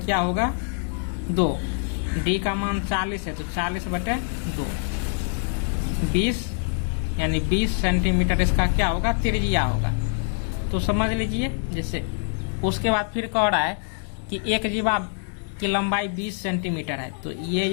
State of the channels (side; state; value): right; silent; 62 dB below the other